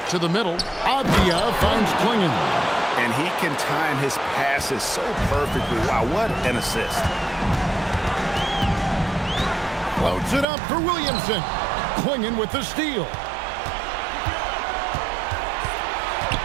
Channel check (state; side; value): drops out; left; at 10.5 s